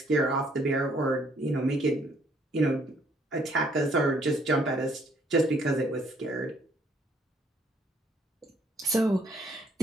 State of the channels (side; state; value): both; normal; correlation 0.65